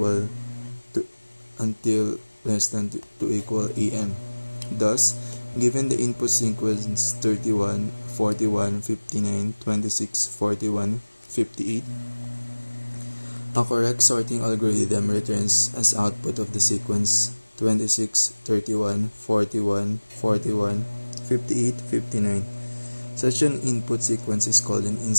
to until less than to equal AN. Thus, given the input sequence 31, 41, 59, 26, 41, 58, a correct sorting algorithm returns as output of the sequence 26, 31, 41, 41, 58, 59. Such an input sequence is called an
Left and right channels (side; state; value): both; inverted; correlation -1.00